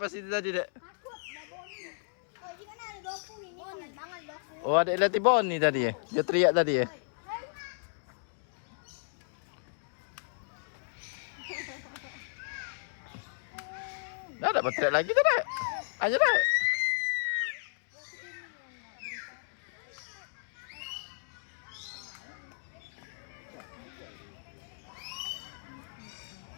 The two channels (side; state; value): right; silent; digital silence